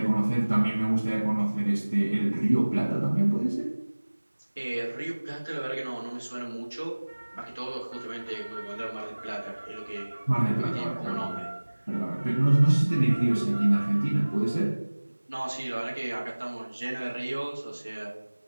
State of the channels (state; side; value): inverted; both; correlation -1.00